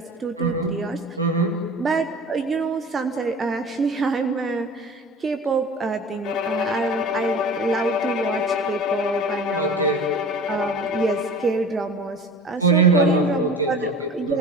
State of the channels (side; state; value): both; normal; correlation 0.39